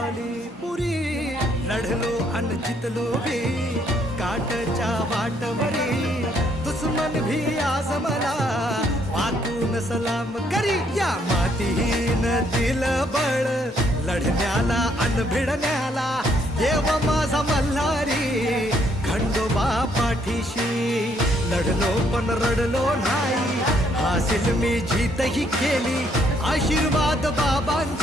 पुरी. लढलो अन जितलो भी काठच्या वाटवरी, दुश्मन भी आज मला वाकून सलाम करी. या मातीहीन दिल बळ लढण्याला अन भिडण्याला, देव माझा मल्हारी खंडोबा पाठीशी. लढलो पण रडलो नाही, हासिल मी जीतही केली, आशीर्वाद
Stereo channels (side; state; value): both; normal; correlation 0.70